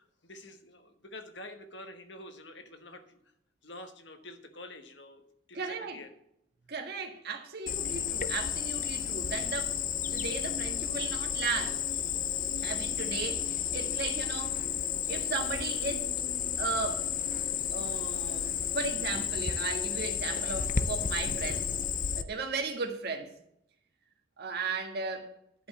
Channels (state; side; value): quieter; right; 3.2 dB